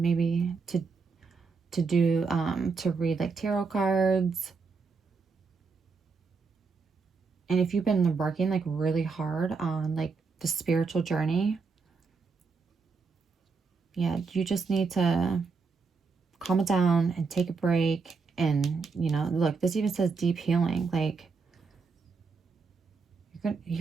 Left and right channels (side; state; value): left; quieter; 4.8 dB